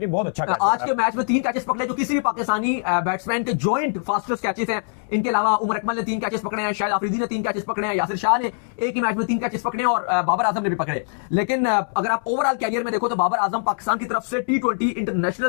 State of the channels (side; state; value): right; silent; 64 dB below the other